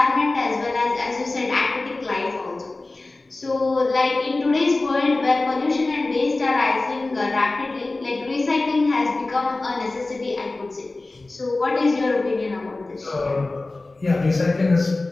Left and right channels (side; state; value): right; quieter; 3.2 dB